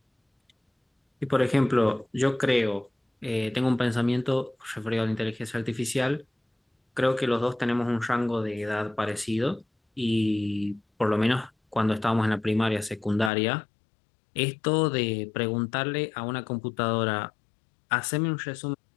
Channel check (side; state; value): right; drops out; at 13.3 s